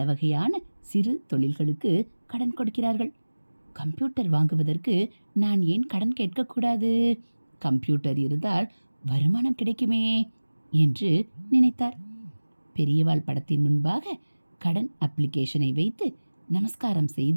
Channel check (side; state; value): both; inverted; correlation -1.00